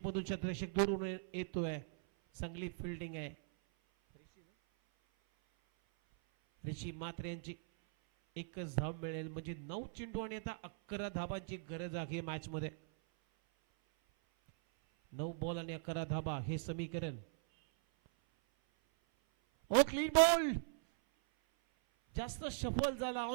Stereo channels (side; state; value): left; silent; 51 dB below the other